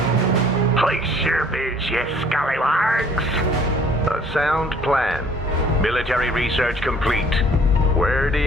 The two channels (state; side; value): normal; both; correlation 0.56